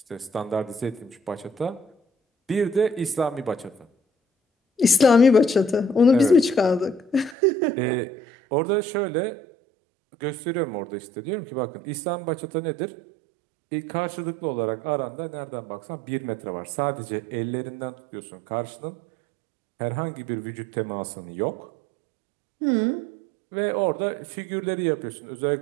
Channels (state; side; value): drops out; left; at 7.4 s